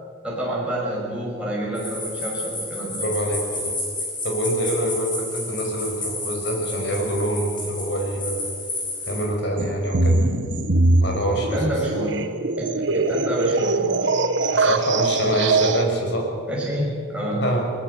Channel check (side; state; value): both; normal; correlation 0.22